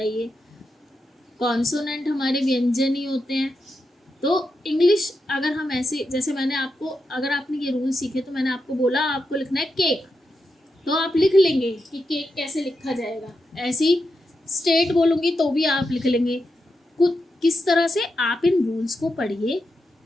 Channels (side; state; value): both; normal; correlation 0.86